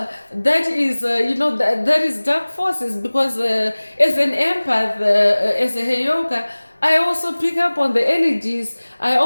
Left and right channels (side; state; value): both; inverted; correlation -1.00